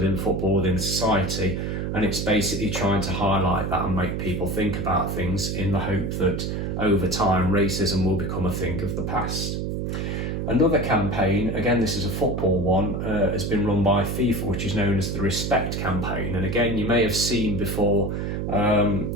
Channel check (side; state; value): right; noise; hum, 2 dB below the sound